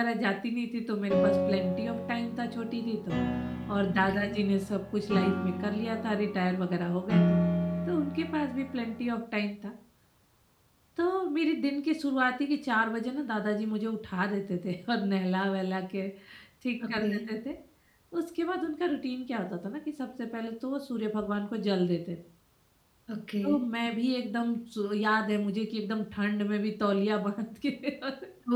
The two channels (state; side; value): identical; both; correlation 1.00